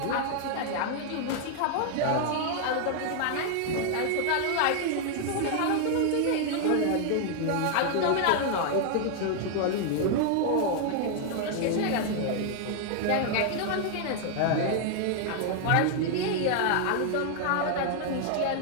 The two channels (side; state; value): both; different; correlation 0.00